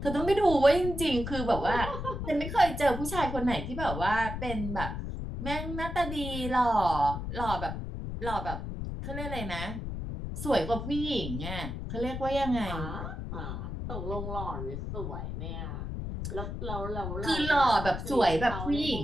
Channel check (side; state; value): left; noise; rumble, 5 dB below the sound